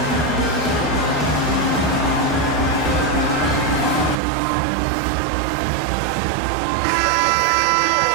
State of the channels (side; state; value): left; drops out; at 4.2 s